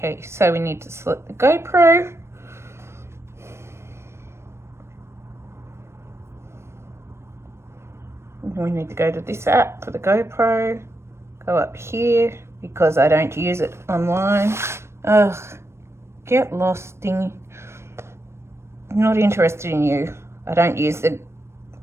so we need to select the GoPro. We need to go to this app for the GoPro, go up here, because I don't use it online. Ugh, get lost, thingy. Not interested in you. I don't use the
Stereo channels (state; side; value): late; left; 0.13 ms